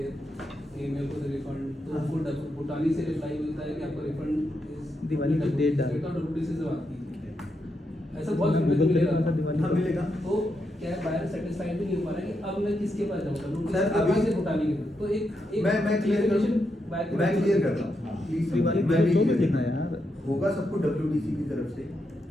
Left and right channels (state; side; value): normal; both; correlation 0.83